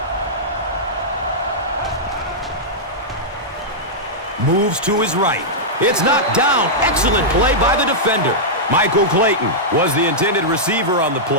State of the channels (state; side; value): normal; both; correlation -0.09